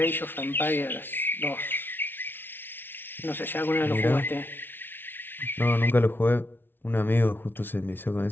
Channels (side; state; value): right; late; 0.10 ms